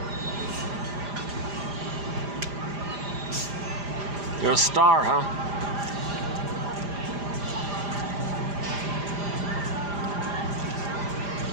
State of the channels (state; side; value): late; left; 5.0 ms